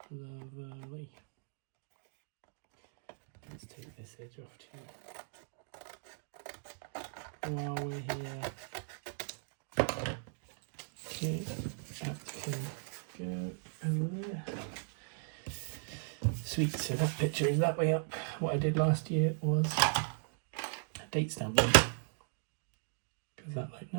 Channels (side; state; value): left; silent; 53 dB below the other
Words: Lovely. Let's take this edge off too while we're here. Okay, that can go over there. Sweet, so that picture is that way up. What I did last year was a date stamp one, because that looked